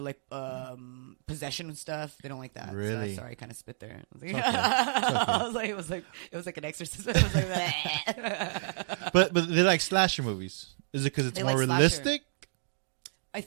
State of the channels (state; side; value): silent; left; digital silence